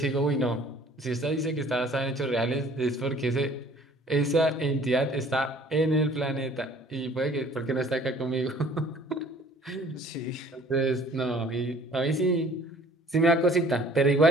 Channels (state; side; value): normal; both; correlation 0.53